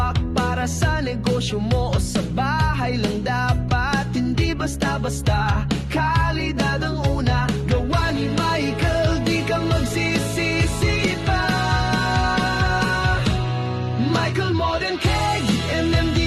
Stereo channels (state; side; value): identical; both; correlation 1.00